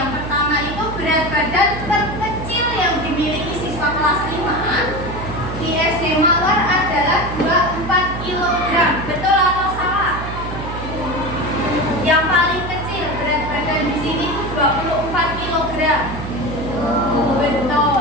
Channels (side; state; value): right; noise; hum, 8 dB below the sound